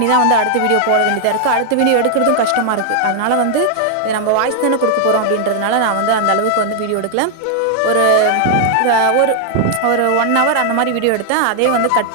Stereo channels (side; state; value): both; different; correlation 0.00